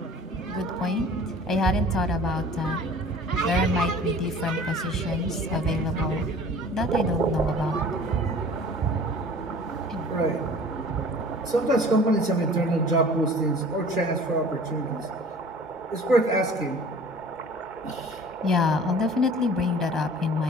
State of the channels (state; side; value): normal; both; correlation 0.46